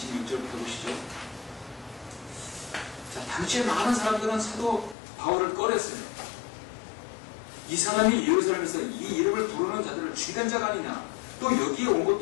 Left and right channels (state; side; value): drops out; right; at 5.0 s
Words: 보시죠. 자, 당시에 많은 사람들은 사도 바울을 꺼렸어요. 이 사람이 예루살렘에서 이 이름을 부르는 자들을 죽인 자가 아니냐, 또 여기에 온